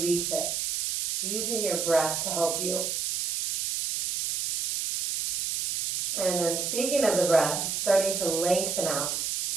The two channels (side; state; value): right; noise; hiss, 1 dB below the sound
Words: it, using your breath to help you. And then speaking of the breath, starting to lengthen out.